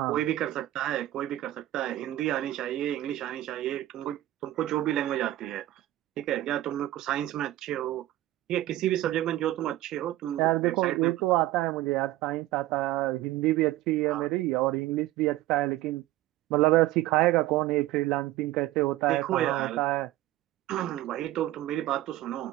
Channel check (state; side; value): quieter; left; 15.4 dB